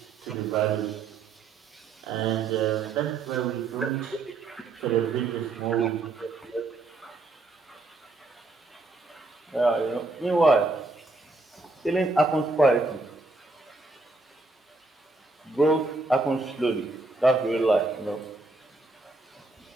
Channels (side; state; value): left; quieter; 3.4 dB